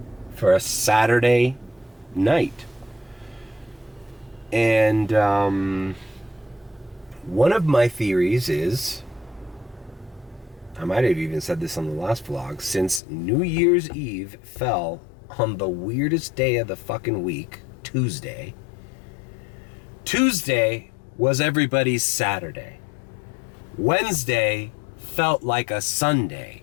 for a Saturday night. And one of my theories is I might have even said this on the last vlog, since New Year's Eve fell on the weirdest day of the fucking week, Tuesday. Tuesday was everybody's Saturday. Wednesday felt like a Sunday.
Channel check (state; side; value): drops out; right; at 13.0 s